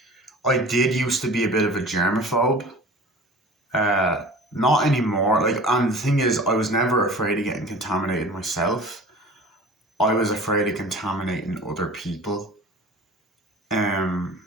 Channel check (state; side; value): normal; both; correlation 0.41